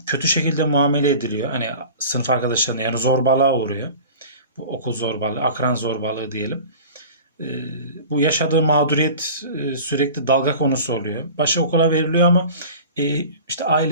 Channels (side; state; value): both; inverted; correlation -0.39